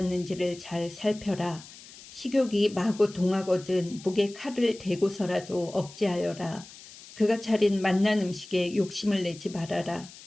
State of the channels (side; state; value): left; noise; hiss, 18 dB below the sound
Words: 잘 살펴라. 식욕이 마구 동하거든 목에 칼을 대고서라도 억제하여라. 그가 차린 맛난 음식에 욕심을 내지 말아라.